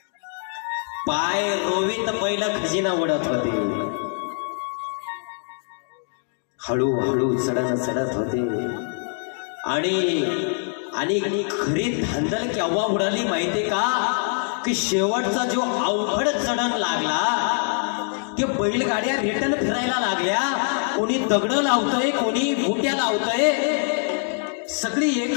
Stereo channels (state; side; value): silent; right; 57 dB below the other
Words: पाय रोवीत बैल खजिना वडत होते. हळूहळू चढत होते आणि खरी धांदल केव्हा उडाली माहितीये का, की शेवटचा जो अवघड चढण लागला, ते बैलगाड्या रिटर्न फिरायला लागल्या. कोणी दगड लावतोय, कोणी बुट्या लावतोय, सगळी